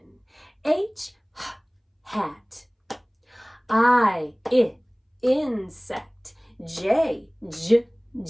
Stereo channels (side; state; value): both; identical; correlation 1.00